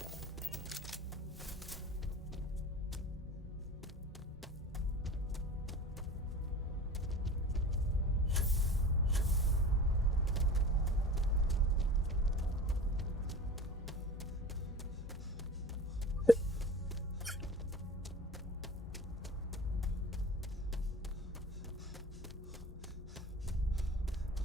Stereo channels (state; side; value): normal; both; correlation 0.37